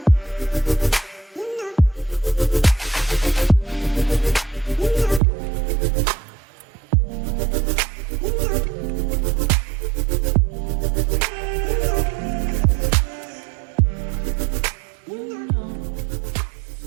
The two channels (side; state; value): left; drops out; at 5.2 s